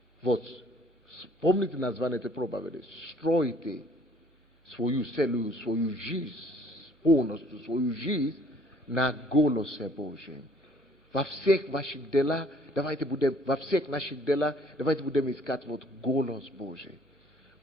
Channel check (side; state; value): both; normal; correlation 0.58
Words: Вот, помните название этой проповеди? Стройте свою целую, свою жизнь, полностью свою жизнь на голосе Божьем. Во всех ваших делах давайте будем во всех наших делах, давайте будем искать вот голос Божий.